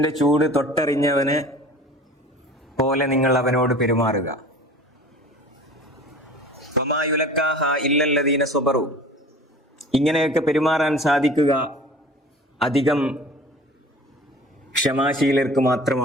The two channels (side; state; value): both; normal; correlation 0.42